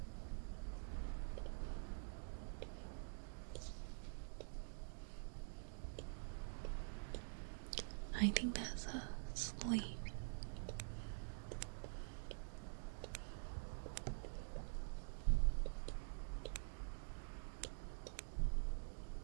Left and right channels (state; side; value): silent; left; digital silence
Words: I think that's a sleeve.